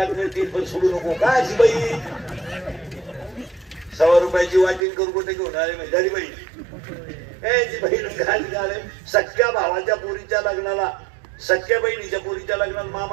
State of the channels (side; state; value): left; drops out; at 4.8 s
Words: मिळतील पण सोडू नको काय अशी बाई 100 रुपयाची वाटीन करू कुठे घेऊन आले म्हणजे बाई सख्या भावाच्या पोरीच्या लग्नाला सख्या बहिणीच्या पोरीच्या लग्नाला